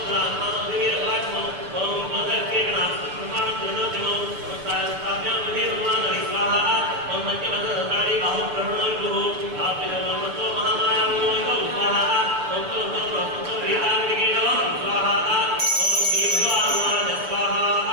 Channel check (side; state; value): left; late; 6.6 ms